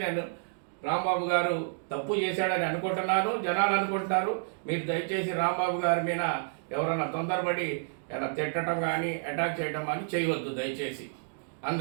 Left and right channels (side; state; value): left; silent; digital silence